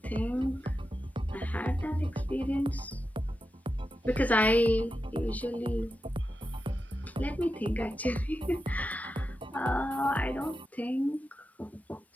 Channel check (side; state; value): both; normal; correlation 0.90